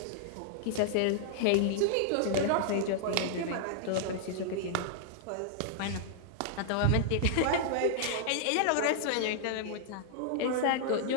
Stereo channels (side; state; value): both; different; correlation -0.01